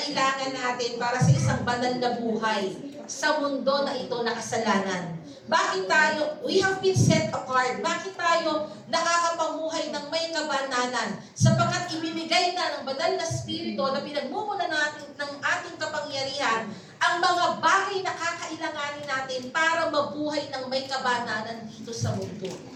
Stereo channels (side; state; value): both; identical; correlation 1.00